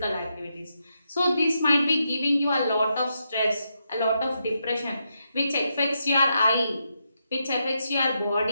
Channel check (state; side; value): inverted; both; correlation -0.83